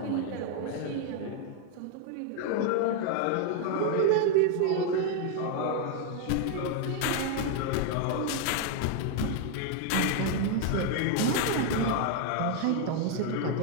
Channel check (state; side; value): different; both; correlation 0.01